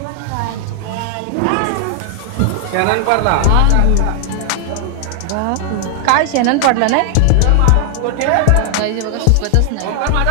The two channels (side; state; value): both; different; correlation 0.00